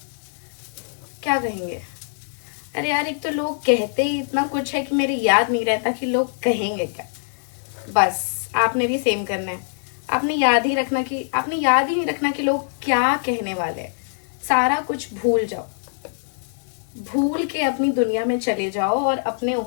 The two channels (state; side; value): silent; right; digital silence